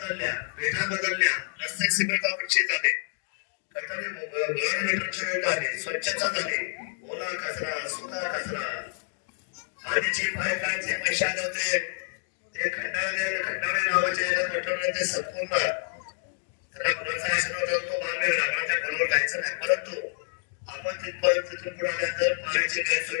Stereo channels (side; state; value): right; silent; digital silence